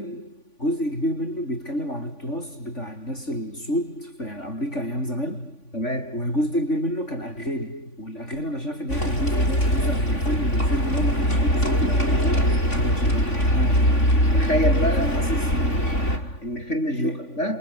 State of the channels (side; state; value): right; late; 3.5 ms